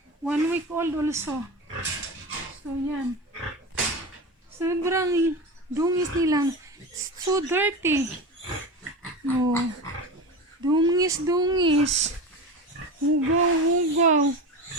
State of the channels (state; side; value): normal; both; correlation 0.26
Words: 1 week old also. So, yan. Sobrang dungis nila. So dirty. Oh. Dungis. Hugaw.